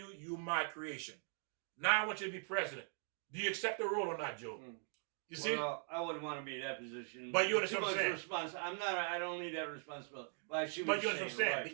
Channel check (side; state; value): left; silent; 50 dB below the other